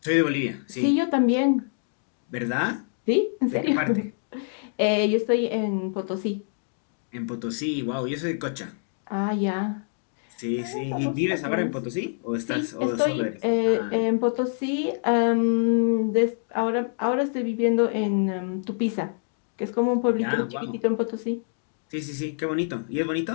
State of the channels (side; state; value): right; silent; digital silence